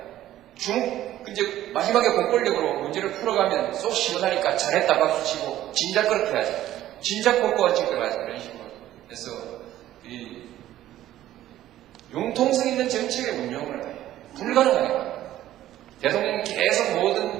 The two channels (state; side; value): quieter; left; 13.4 dB